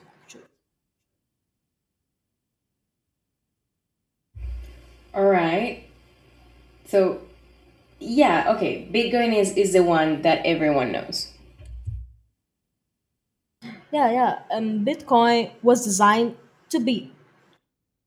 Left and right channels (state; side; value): identical; both; correlation 1.00